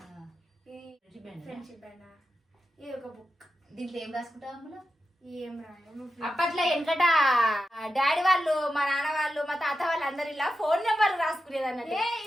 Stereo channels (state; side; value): normal; both; correlation 0.90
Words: ఫ్రెండ్షిప్ బ్యాండ్. ఇది ఒక బుక్. దీంట్లో ఏం రాసుకుంటావు అందులో? ఏం రాదు. అప్పట్లో వెనకట డాడీ వాళ్ళు, మా నాన్న వాళ్ళు, మా తాత వాళ్ళు అందరు ఇలా ఫోన్ నెంబర్ రాసుకునేది అన్నట్టు.